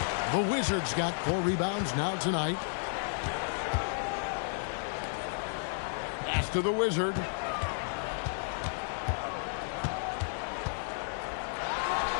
The Wizards got 4 rebounds now tonight. Pass to the Wizard.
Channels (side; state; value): right; silent; digital silence